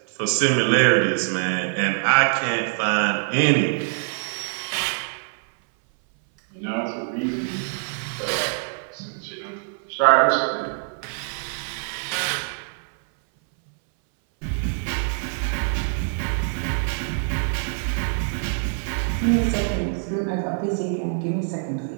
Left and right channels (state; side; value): silent; left; 60 dB below the other